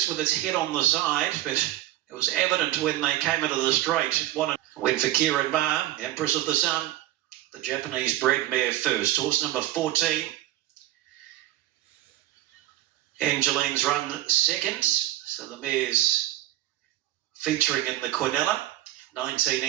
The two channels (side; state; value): left; quieter; 14.6 dB